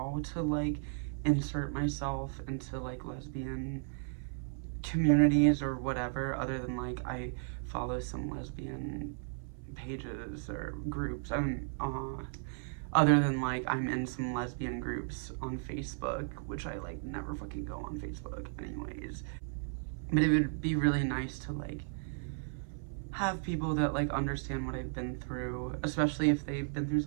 to like insert myself into like lesbian communities or whatever, other than like I follow some lesbian pages or groups. Other than like I'm in some lesbian groups on Facebook, which I like never fucking go on Facebook anyways. But it would be really nice to like have people that like understand what I've been through, especially if they've been through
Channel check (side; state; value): left; silent; 54 dB below the other